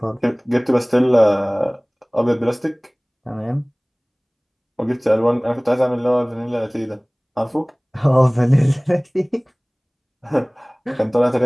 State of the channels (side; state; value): both; identical; correlation 1.00